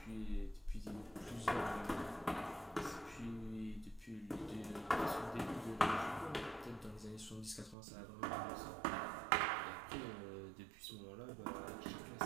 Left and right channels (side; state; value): left; drops out; at 7.8 s